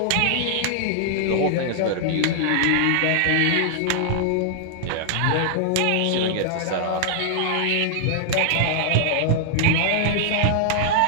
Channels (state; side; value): different; both; correlation -0.01